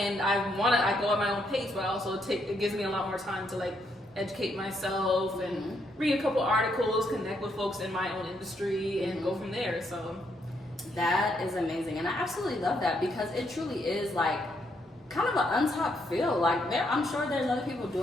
I go at my own pace, but also it gives me a lot more time to like educate myself and read a couple articles, connect with folks in my own industry, and go from there. So that is amazing, and I absolutely love that because it truly is like kind of an untapped field. Like I'm sure there's other people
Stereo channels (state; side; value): normal; both; correlation 0.75